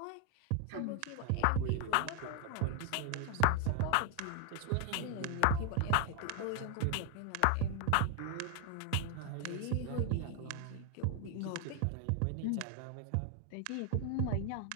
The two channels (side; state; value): both; different; correlation 0.00